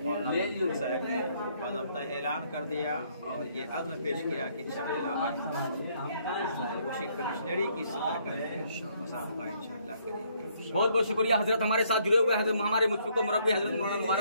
साहब ने बाज़ाब्ता ऐलान कर दिया और ये अज़्म पेश किया कि इंशाअल्लाह कोशी कमिश्नरी की सतह का मुसाबका इंशाअल्लाह करेंगे। बहुत बहुत शुक्रिया हजरत हमारे साथ जुड़े हुए हजरत हमारे मुफ्ती को मुरब्बी हजरत मौलाना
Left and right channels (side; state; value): both; inverted; correlation -0.67